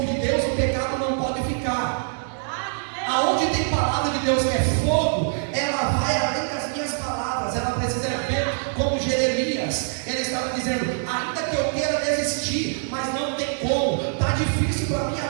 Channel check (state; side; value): silent; left; 63 dB below the other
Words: de Deus, o pecado não pode ficar. Aonde tem palavra de Deus que é fogo, ela vai além das minhas palavras. Ela precisa ver como Jeremias. Ele estava dizendo: ainda que eu queira desistir, mas não tem como. Está difícil para a minha